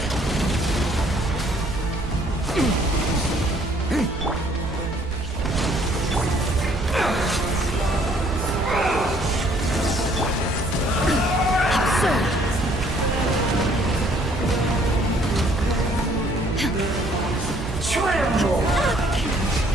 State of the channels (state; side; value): normal; both; correlation 0.61